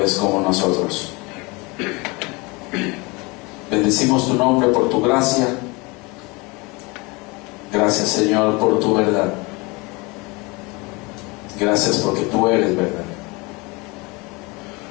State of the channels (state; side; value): quieter; right; 26.3 dB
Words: como nosotros. Bendecimos tu nombre por tu gracia. Gracias, Señor, por tu verdad. Gracias porque tú eres verdad.